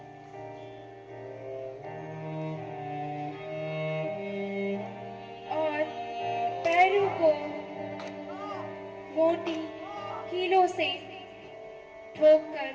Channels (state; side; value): identical; both; correlation 1.00